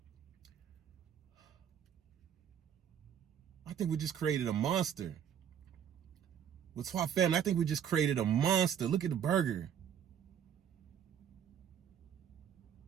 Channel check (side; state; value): left; quieter; 8.9 dB